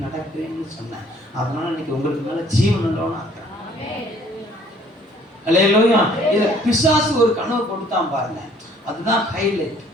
நடக்கிறேன்னு சொன்னேன். அதனால இன்னைக்கு உங்களுக்கு மேல ஜீவன் உள்ளவனா இருக்கிறேன். அல்லேலூயா. இத பிசாசு ஒரு கனவு கொடுத்தான் பாருங்க, அதுதான் ஹைலைட்.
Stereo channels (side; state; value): both; normal; correlation 0.58